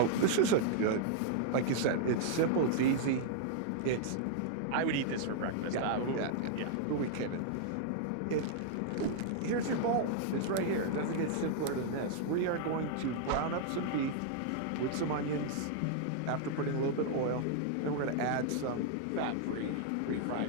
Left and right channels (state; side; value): different; both; correlation -0.01